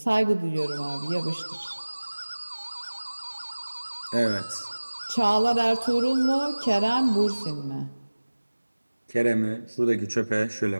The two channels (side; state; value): both; inverted; correlation -1.00